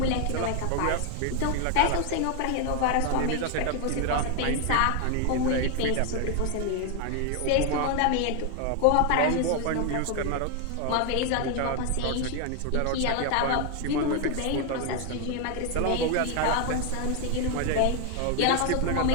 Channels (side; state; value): both; different; correlation 0.01